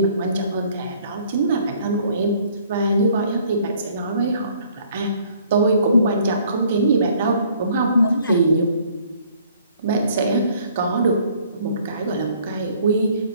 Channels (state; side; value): inverted; both; correlation -0.59